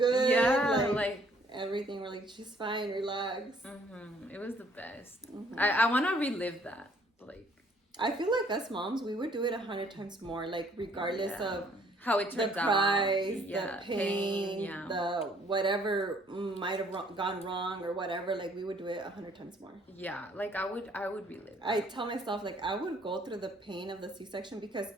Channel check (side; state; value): both; normal; correlation 0.62